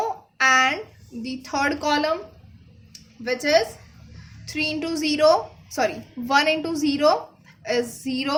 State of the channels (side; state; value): both; identical; correlation 1.00